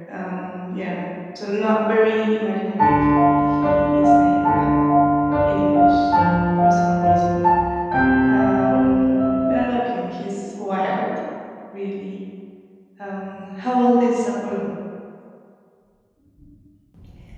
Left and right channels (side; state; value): both; identical; correlation 1.00